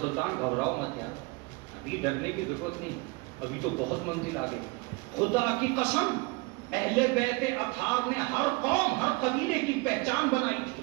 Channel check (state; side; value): quieter; left; 25.9 dB